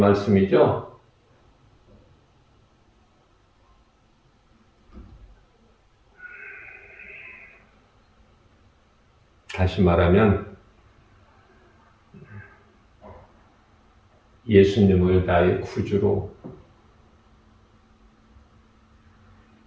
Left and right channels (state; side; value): identical; both; correlation 1.00